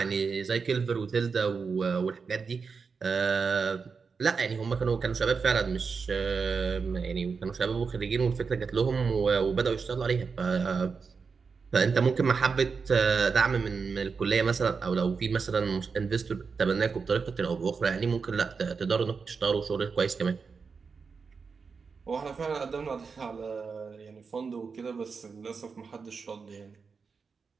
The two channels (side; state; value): left; quieter; 5.2 dB